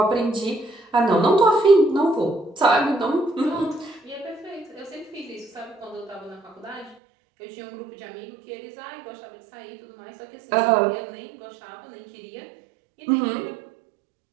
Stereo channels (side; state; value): left; drops out; at 7.0 s